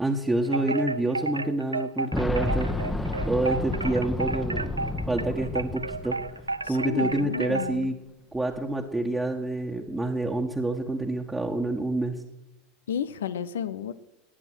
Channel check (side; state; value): both; normal; correlation 0.51